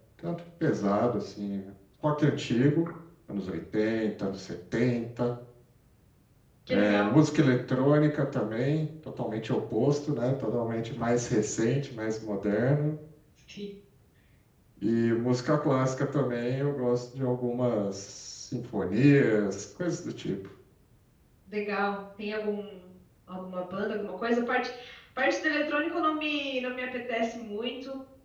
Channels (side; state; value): both; identical; correlation 1.00